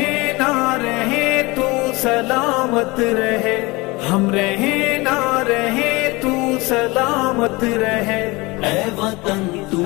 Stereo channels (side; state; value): right; quieter; 23.6 dB